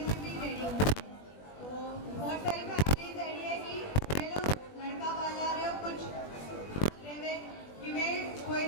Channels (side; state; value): right; late; 20 ms